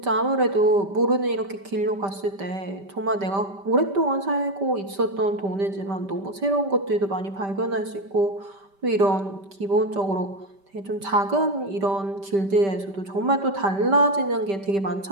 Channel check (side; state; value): left; late; 5.1 ms